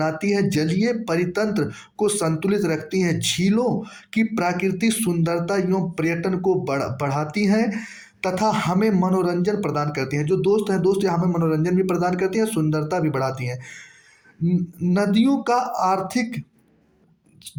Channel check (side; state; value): both; identical; correlation 1.00